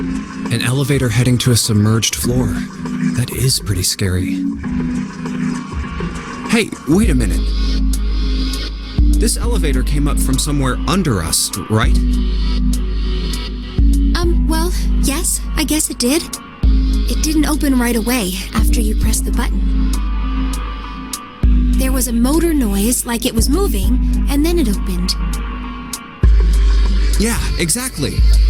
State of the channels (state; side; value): identical; both; correlation 1.00